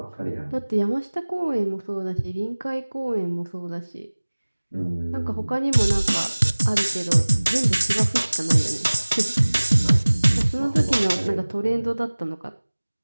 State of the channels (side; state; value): both; inverted; correlation -1.00